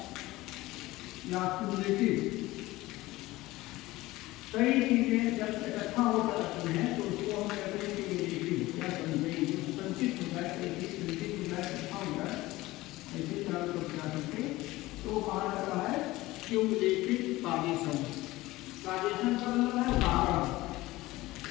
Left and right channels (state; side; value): quieter; right; 18.6 dB